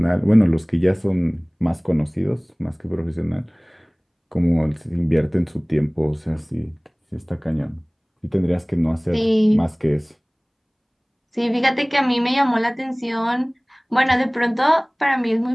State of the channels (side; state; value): both; identical; correlation 1.00